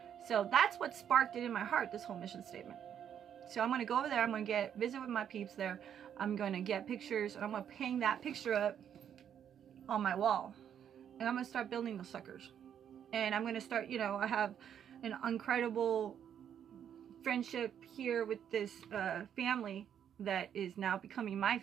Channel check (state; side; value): quieter; left; 9.0 dB